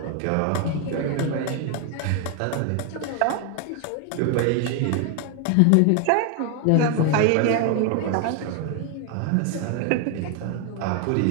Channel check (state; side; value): different; both; correlation 0.01